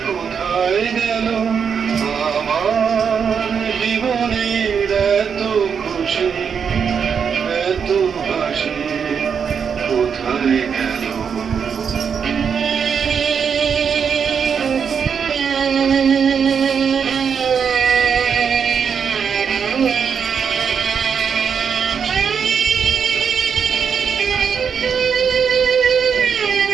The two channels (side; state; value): left; quieter; 6.8 dB